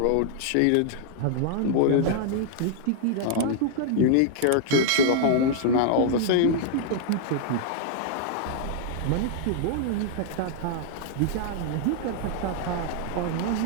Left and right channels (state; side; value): different; both; correlation -0.01